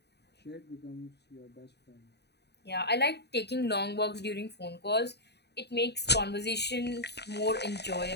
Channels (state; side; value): late; right; 0.49 ms